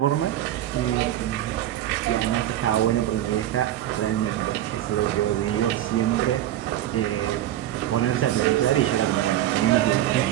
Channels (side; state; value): left; quieter; 12.9 dB